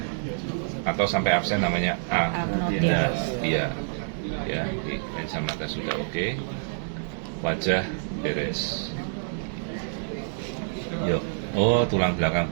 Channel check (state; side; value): silent; left; digital silence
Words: atau sampai absen namanya agnotia. Ya, di lensa mata sudah oke. Wajah beres. Yuk, tulang belakang